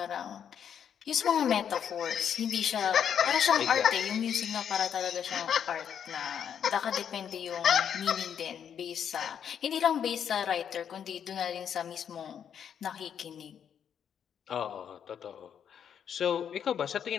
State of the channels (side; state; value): right; quieter; 8.4 dB